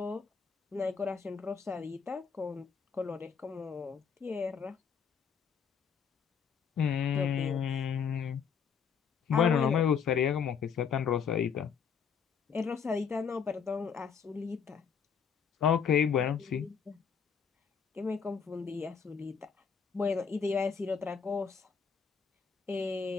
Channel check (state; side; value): quieter; right; 6.6 dB